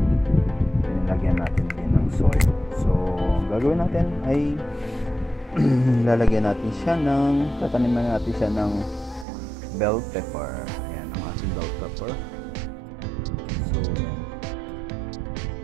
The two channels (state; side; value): drops out; left; at 9.2 s